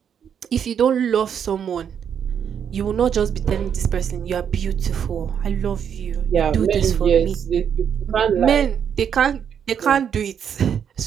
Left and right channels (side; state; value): left; quieter; 8.1 dB